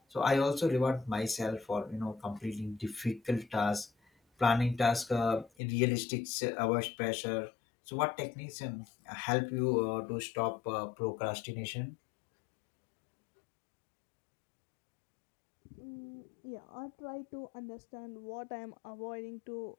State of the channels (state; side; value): drops out; right; at 5.5 s